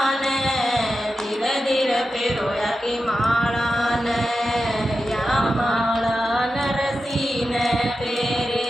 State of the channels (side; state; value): both; normal; correlation 0.91